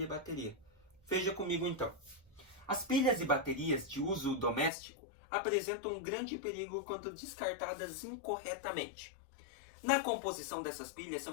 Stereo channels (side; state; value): right; drops out; at 4.7 s